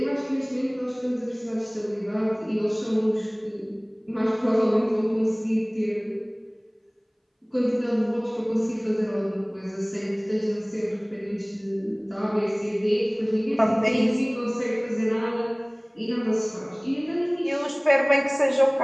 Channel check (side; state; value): both; identical; correlation 1.00